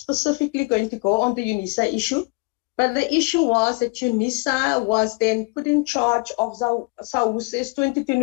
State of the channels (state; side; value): quieter; right; 29.3 dB